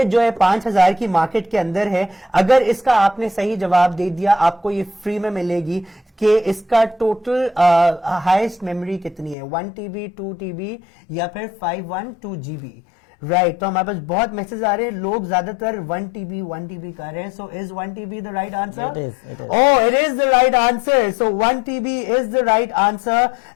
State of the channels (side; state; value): right; drops out; at 9.3 s